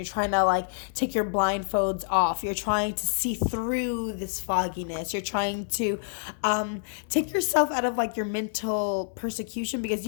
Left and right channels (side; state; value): right; silent; 60 dB below the other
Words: trying to like take your blindfolds off. You're trying to see through this fogginess. You're trying to take yourself out of like your mental persecution, because